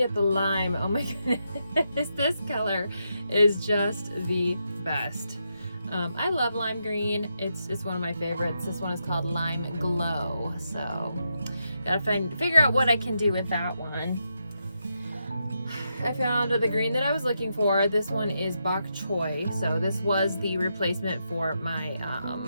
the lime. Oh my goodness, this color is just the best. I love lime green. It's one of my favorites. This one is called Lime Glow. So gotta figure out what I can do with that one. I found the green that I was looking for. This one is bok choy. So this was the replacement for my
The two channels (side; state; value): both; inverted; correlation -0.83